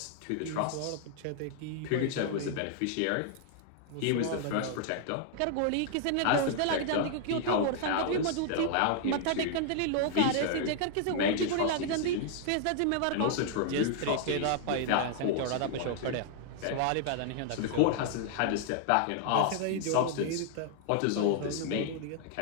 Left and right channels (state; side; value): different; both; correlation -0.01